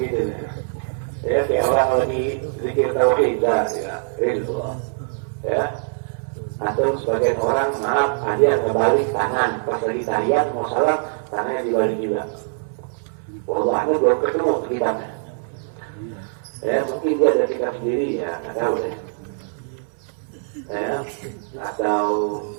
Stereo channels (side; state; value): left; silent; 64 dB below the other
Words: ya. Ya, kayak orang lagi zikir tauhid, ya. Atau sebagian orang, maaf, ada kebalik tangan pas lagi tahiyat mau salam, tangannya dibalik juga. Wallahnya belum ketemu kitabnya. Ya, mungkin dia ada kitab sendiri, ya, nggak tahu deh. Ya, atau